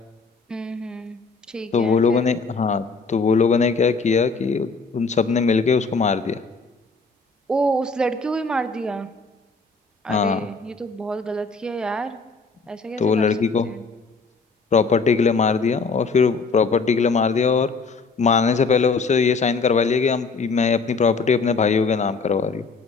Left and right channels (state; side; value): quieter; right; 4.3 dB